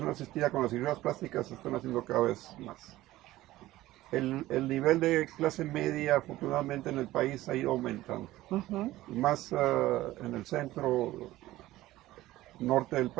asistida como las cirugías plásticas se están haciendo cada vez más. El nivel de clase media, afortunadamente, en el país ha ido aumentando. Ujú. Y más en el centro norte del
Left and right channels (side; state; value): left; quieter; 16.3 dB